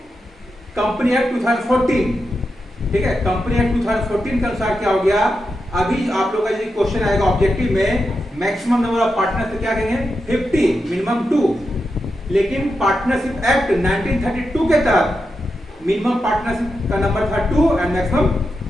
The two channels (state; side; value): normal; both; correlation 0.87